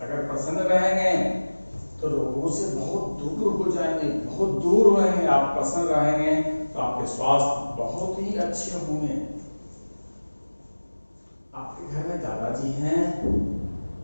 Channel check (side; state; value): both; inverted; correlation -1.00